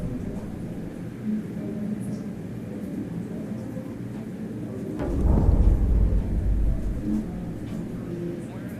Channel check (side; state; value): both; identical; correlation 1.00